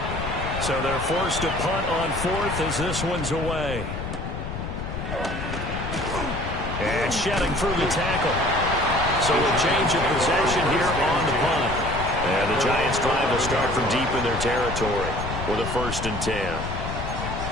So they're forced to punt on fourth as this one's away. And shedding through the tackle. So a change of possession here on the punt. And the Giants drive will start from deep in their territory with a 1st and 10.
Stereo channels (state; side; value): noise; left; rumble, 6 dB below the sound